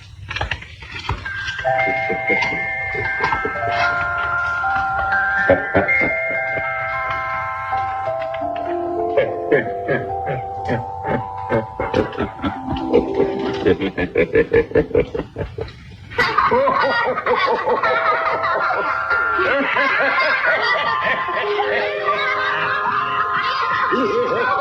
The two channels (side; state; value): both; identical; correlation 1.00